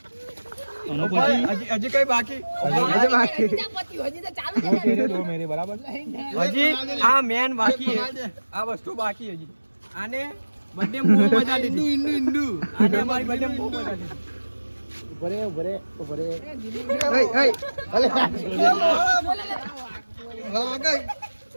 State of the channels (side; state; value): both; inverted; correlation -1.00